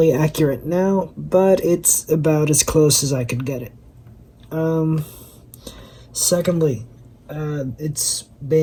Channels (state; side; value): identical; both; correlation 1.00